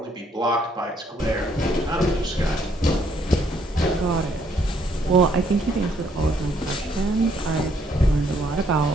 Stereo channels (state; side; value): normal; both; correlation 0.68